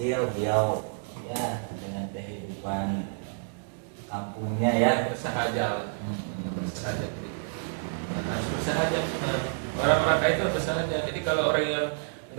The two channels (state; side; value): silent; left; digital silence